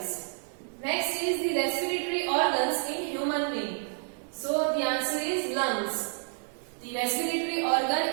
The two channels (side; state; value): left; silent; 58 dB below the other